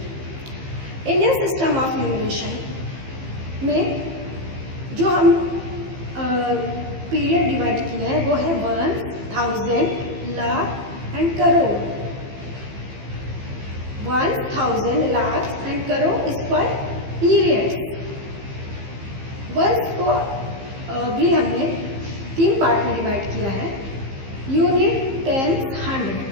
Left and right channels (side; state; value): left; late; 15 ms